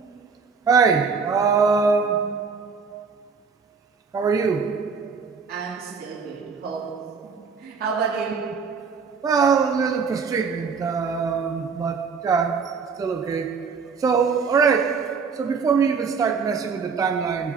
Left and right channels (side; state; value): left; quieter; 5.4 dB